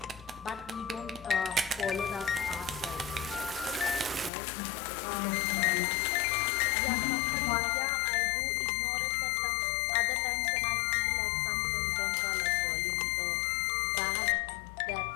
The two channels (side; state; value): right; drops out; at 4.3 s